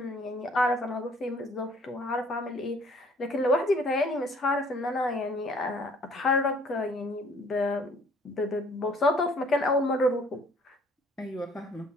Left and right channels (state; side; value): normal; both; correlation 0.58